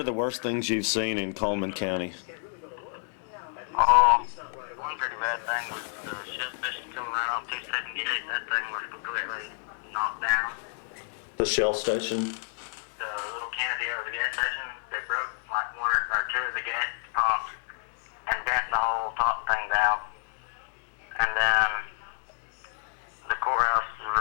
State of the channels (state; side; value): silent; right; 56 dB below the other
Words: the worst things you've seen in Cullman County? One pretty bad thing was the shell station coming right off 278. That thing was completely knocked down. The Shell station? The little canopy over the gas station, they broke like one or two of the gas pumps and bent the whole top thing down. And then the courthouse